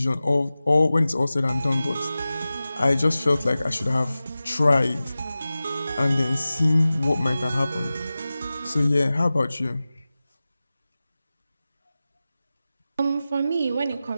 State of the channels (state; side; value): inverted; both; correlation -0.96